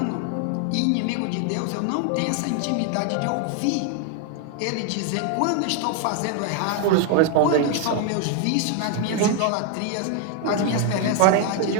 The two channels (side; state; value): both; different; correlation 0.01